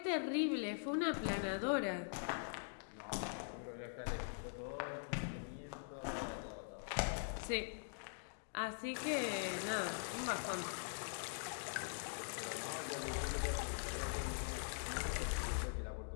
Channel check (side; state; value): right; silent; digital silence